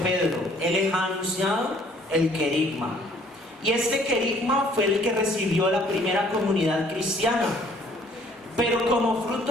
él les ha anunciado el querigma. Y este querigma fue el que recibió la primera comunidad cristiana. Pero como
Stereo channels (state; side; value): normal; both; correlation 0.59